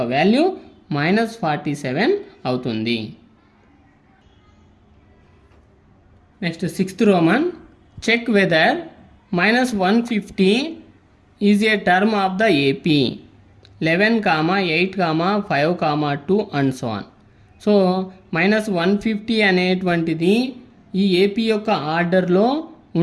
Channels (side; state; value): both; identical; correlation 1.00